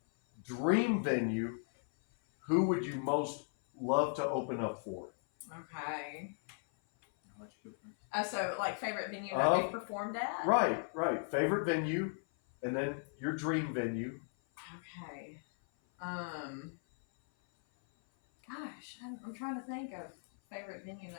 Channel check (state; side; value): silent; right; 53 dB below the other